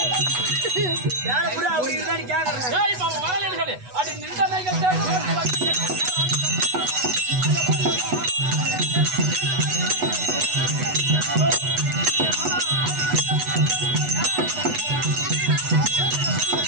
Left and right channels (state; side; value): late; left; 8.1 ms